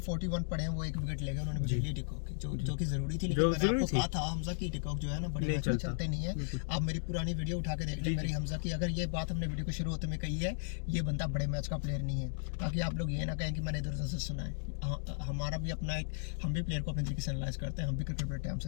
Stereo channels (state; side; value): silent; right; digital silence